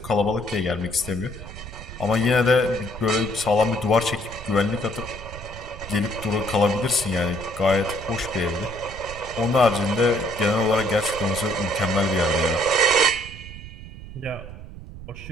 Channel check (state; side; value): noise; right; rumble, 13 dB below the sound